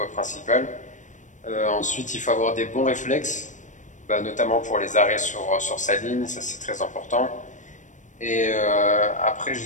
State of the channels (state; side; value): late; right; 0.36 ms